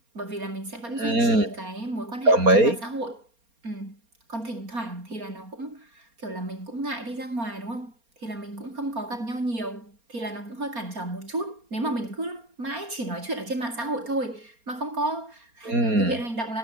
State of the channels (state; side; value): late; left; 4.3 ms